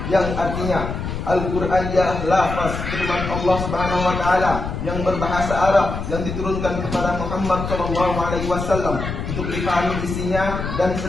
yang artinya Al-Quran ialah lafaz firman Allah Subhanahu wa taala yang berbahasa Arab yang diturunkan kepada Muhammad SAW untuk dipahami isinya dan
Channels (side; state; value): left; noise; rumble, 5 dB below the sound